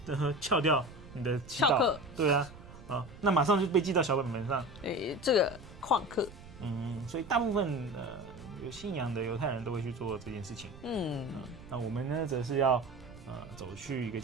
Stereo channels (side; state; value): right; noise; rumble, 18 dB below the sound